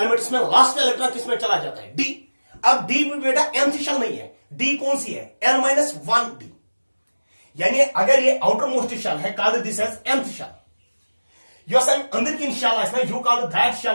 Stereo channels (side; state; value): both; inverted; correlation -1.00